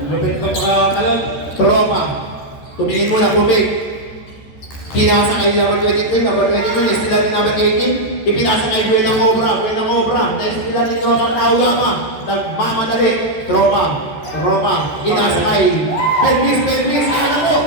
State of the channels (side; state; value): right; late; 14 ms